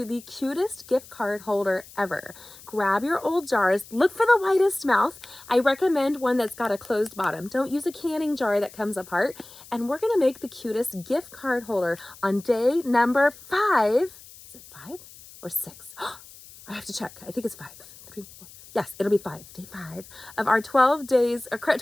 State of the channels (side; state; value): left; noise; hiss, 20 dB below the sound